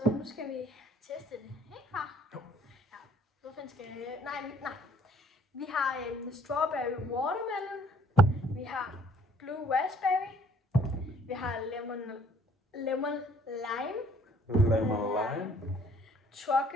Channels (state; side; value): normal; both; correlation 0.59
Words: nu skal vi teste det. Ikke far? Jo. Ja. Hvorfor skal jeg... Nej. Vi har en strawberry watermelon. Vi har blue raspberry. Vi har lemon lime. Lemon lime.